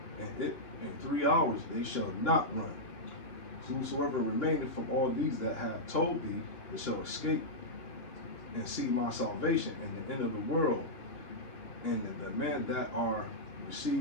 and in 3 hours they shall not run. Whosoever remaineth from all these that have told thee, it shall escape and see my salvation in the end of the world. And the men that are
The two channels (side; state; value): right; late; 2.8 ms